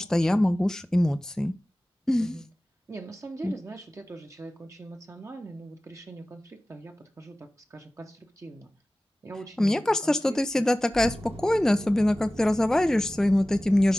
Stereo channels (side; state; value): both; normal; correlation 0.97